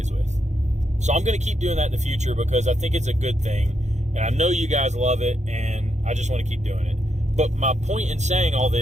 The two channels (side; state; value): left; late; 0.34 ms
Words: with. So I'm going to keep doing that in the future because I think it's a good thing, and I know you guys love it, and I just want to keep doing it. But my point in saying all